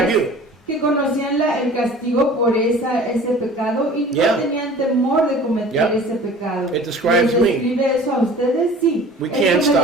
you? que conocían el castigo por ese pecado y no Yeah. tenían temor de cometer Yeah. ese pecado. It describes ¿Les me. describe eso a ustedes? Sí. We Eso can't me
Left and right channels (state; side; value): normal; both; correlation 0.45